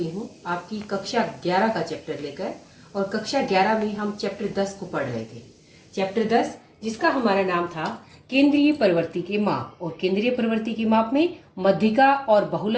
हूँ आपकी कक्षा 11 का चैप्टर लेकर। और कक्षा 11 में हम चैप्टर 10 को पढ़ रहे थे। चैप्टर 10 जिसका हमारा नाम था केंद्रीय प्रवृत्ति के माप। और केंद्रीय प्रवृत्ति के माप में मध्यिका और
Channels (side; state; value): both; identical; correlation 1.00